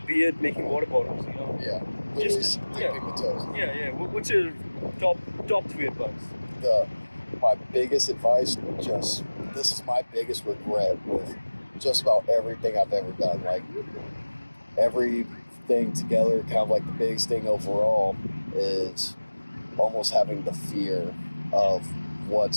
be it making water bottles, you know? Yeah. Just dipping the toes. Yeah. What's your top 3 advice? My biggest advice, this is my biggest regret with just about everything I've ever done. Like, everything together, kind of like the biggest thing overall is almost having the fear of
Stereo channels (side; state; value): both; inverted; correlation -1.00